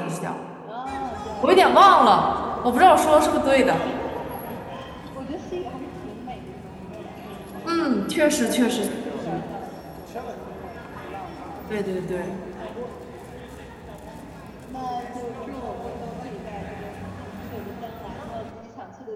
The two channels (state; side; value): identical; both; correlation 1.00